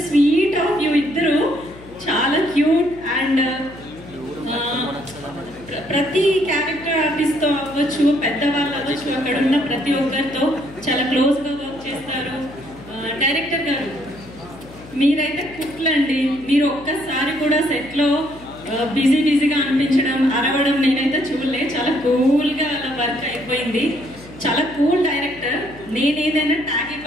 స్వీట్ ఆఫ్ యూ, ఇద్దరు చాలా క్యూట్ అండ్ ప్రతి క్యారెక్టర్ ఆర్టిస్ట్తో అవ్వచ్చు, పెద్దవాళ్ళు అవ్వచ్చు, అక్కడ ఉన్న ప్రతి ఒక్కరితో చాలా క్లోజ్గా వర్క్ చేస్తారు. డైరెక్టర్ గారు మీరైతే కుట్లండి, మీరు ఒక్కసారి కూడా సెట్లో బిజీగా అనిపించడం, అరవడం నేనైతే చూడలే. చాలా కూల్గా అలా వర్క్ అయిపోయింది. చాలా కూల్ డైరెక్టర్. నేను ఏదైనా ట్యాగ్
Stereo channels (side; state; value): left; noise; hum, 19 dB below the sound